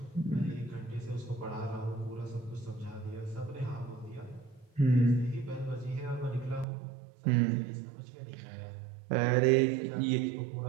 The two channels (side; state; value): left; drops out; at 6.7 s